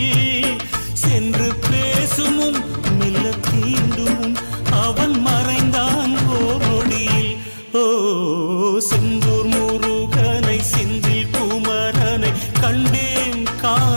சென்று பேசுமும் மெல்ல தீண்டும் அவன் மறைந்தான் ஓடியில் ஓ செந்தூர் முருகனை செந்தில் குமரனை கண்டேன்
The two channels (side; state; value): both; inverted; correlation -1.00